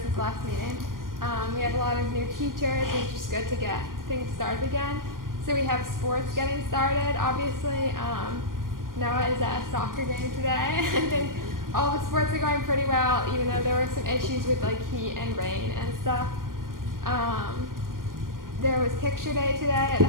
since last meeting. We have a lot of new teachers, and it's just good to get things started again. So we have sports getting started. Obviously, Noah is at a soccer game today. I think all the sports are going pretty well, even though there were some issues with like heat and rain and stuff. There was picture day today at the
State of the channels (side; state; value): left; late; 0.91 ms